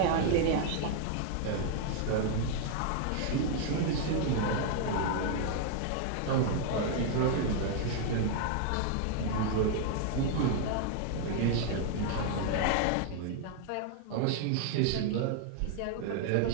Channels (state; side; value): different; both; correlation 0.00